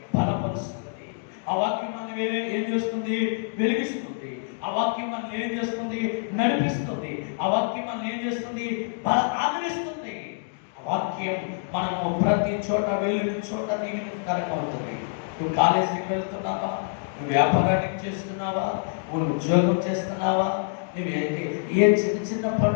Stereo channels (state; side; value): silent; right; digital silence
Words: బలపరుస్తుంది. ఆ వాక్యం మనల్ని ఏం చేస్తుంది? వెలిగిస్తుంది. ఆ వాక్యం మనల్ని ఏం చేస్తుంది? నడిపిస్తుంది. ఆ వాక్యం మనల్ని ఏం చేస్తుంది? ఆదరిస్తుంది. ఆ వాక్యం మనము ప్రతి చోట వెళ్ళిన చోట దీవెనకరంగా అవుతుంది. నువ్వు కాలేజీకి వెళ్తున్నావా? నువ్వు వ్యాపారానికి చేస్తున్నావా? నువ్వు ఉద్యోగం చేస్తున్నావా? నువ్వేంటి ఏ చిన్న చిన్న